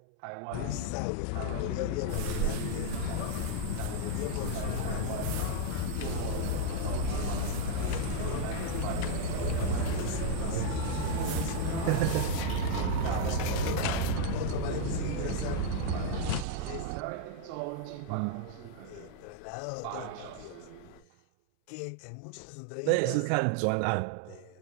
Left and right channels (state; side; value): different; both; correlation -0.01